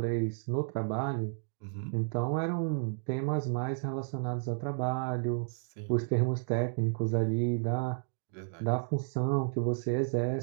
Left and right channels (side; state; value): left; silent; digital silence